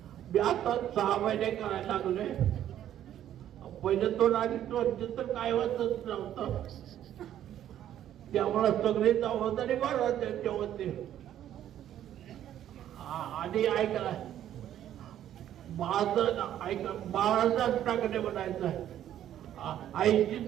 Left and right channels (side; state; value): left; quieter; 11.3 dB